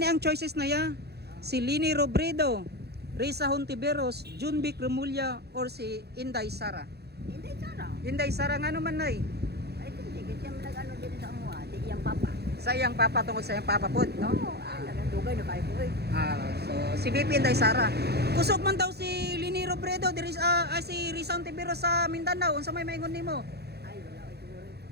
ang choices na ya. Si Leni Robredo, Risa Hontiveros, Jumboy Remulla, or si Inday Sara? Inday Sara. Inday Sara nga naman nay. Ay, hindi. Kasi yung nag-ano din sa amuha. Di iyang papa. Sa iyang papa, tungkol sa iyang papa po, no? Oo. Nagandugay na kayo po eh. So si BP Inday Sara. Kusog man daw si Leni Robredo, si Risa Hontiveros sa Mindanao. Unsa may maingon nimo? Ay, wala ko siguro.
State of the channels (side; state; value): left; late; 0.47 ms